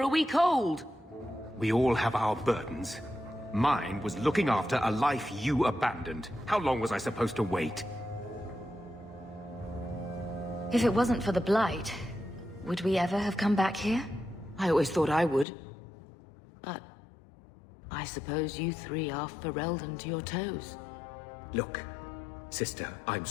a week old! We all have our burdens. Mine was looking after a life you abandoned. How long was I supposed to wait? If it wasn't for the Blight, would we ever have come back here? I always thought I would. But I suppose you three are Ferelden to your toes. Look, sister, I'm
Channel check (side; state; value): right; drops out; at 15.5 s